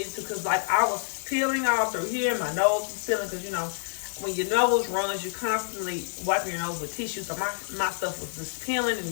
to, because like I was peeling all through here, my nose was peeling, because when your nose runs, you're constantly wiping your nose with tissue. So my stuff was just peeling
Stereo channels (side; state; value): right; silent; digital silence